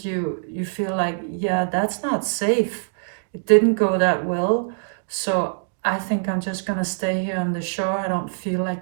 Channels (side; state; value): left; silent; digital silence